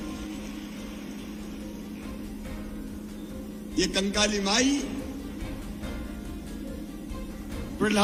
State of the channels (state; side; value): identical; both; correlation 1.00